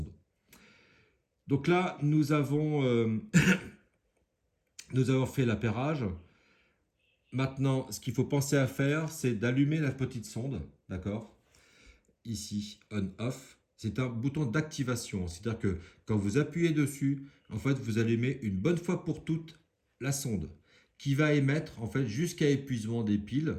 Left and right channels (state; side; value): identical; both; correlation 1.00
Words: Donc là, nous avons fait l'appairage. Maintenant, ce qu'il faut penser à faire, c'est d'allumer la petite sonde, d'accord? Ici, on-off. C'est un bouton d'activation. C'est-à-dire que quand vous appuyez dessus, en fait, vous allumez une bonne fois pour toutes la sonde qui va émettre en fait jusqu'à épuisement des piles,